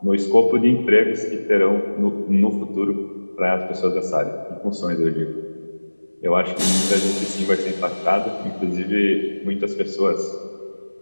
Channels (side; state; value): both; inverted; correlation -1.00